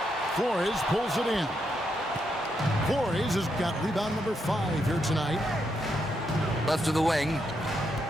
Flores pulls it in. Flores has got rebound number 5 here tonight. Left to the wing.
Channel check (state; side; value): normal; both; correlation 0.80